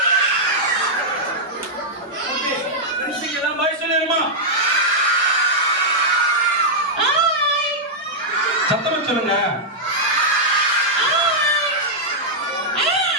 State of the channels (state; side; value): normal; both; correlation -0.06